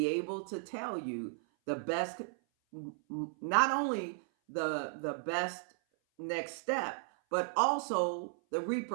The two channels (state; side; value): silent; left; 54 dB below the other